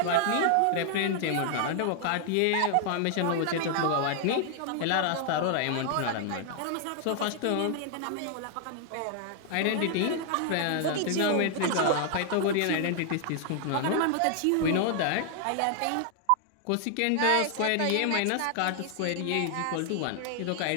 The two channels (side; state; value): both; different; correlation 0.00